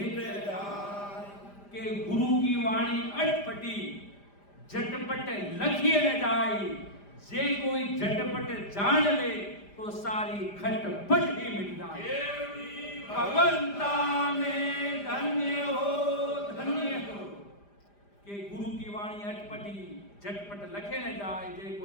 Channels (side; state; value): right; late; 5.0 ms